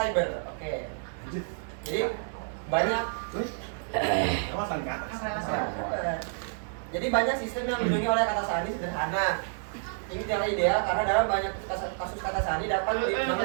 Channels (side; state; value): left; silent; digital silence